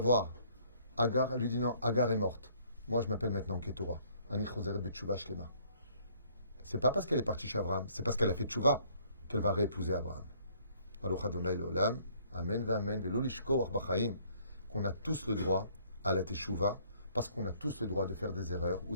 Agar, elle lui dit non, Agar est morte. Moi, je m'appelle maintenant Ketura. Ani Choseret Betchouva Shlema. C'est pas parce qu'elle est partie chez Abraham, c'est parce qu'elle a fait tchouva qu'elle va réépouser Abraham. Baruch Adonai Leolam, Amen Amen, Velo Lishko Arbachaim, qu'on a tous le droit à la teshuva, parce qu'on a tous le droit de faire des erreurs ou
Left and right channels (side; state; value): both; inverted; correlation -0.62